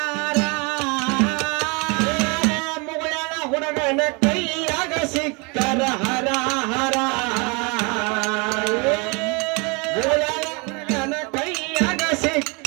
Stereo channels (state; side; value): quieter; left; 30.3 dB